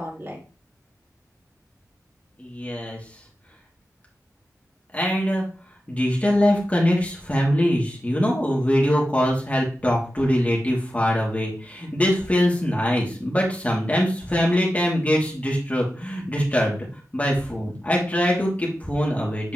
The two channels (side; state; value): both; normal; correlation 0.92